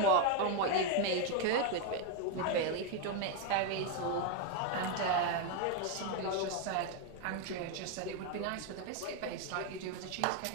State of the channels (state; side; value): different; both; correlation 0.01